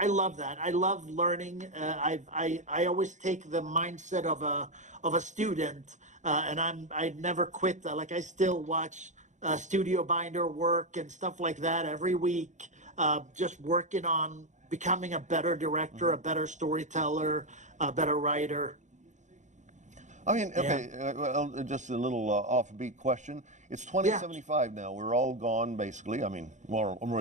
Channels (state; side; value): late; left; 0.35 ms